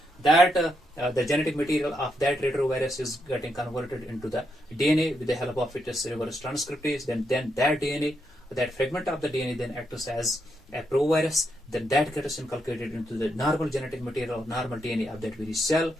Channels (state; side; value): normal; both; correlation 0.81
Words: that the genetic material of that retrovirus is getting converted into the DNA with the help of its reverse transcriptase. Then that DNA, that fragment of the DNA then acts as a provirus. Then that gets inculcated into the normal genetic material, normal DNA of that very cell.